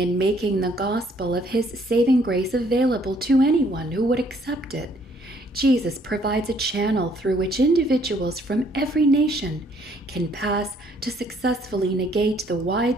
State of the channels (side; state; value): both; normal; correlation 0.64